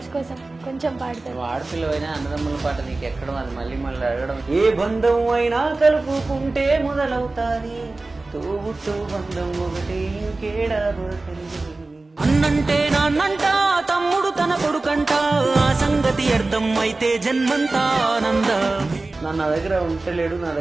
కోసం కొంచెం పాడతారు. ఆడపిల్లవైనా అన్నదమ్ముల పాట నీకు ఎక్కడం అది మళ్ళీ మళ్ళీ అడగడం. ఏ బంధం అయినా కలుపుకుంటే మొదలవుతాది తోబుట్టు బంధం ఒకటి ఇంకేడా దొరకండి. అన్నంటే నాన్నంట తమ్ముడు తన కొడుకంట ఆ సంగతి అర్థం అయితే జన్మంతా ఆనంద. నా దగ్గర ఉంటలేడు నా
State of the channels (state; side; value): quieter; left; 3.3 dB